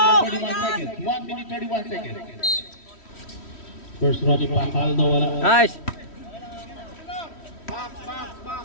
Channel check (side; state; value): right; late; 3.1 ms